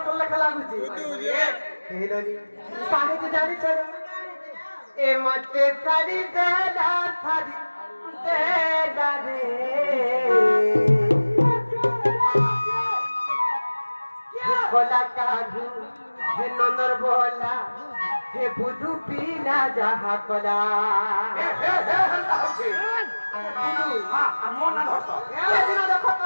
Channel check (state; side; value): inverted; both; correlation -1.00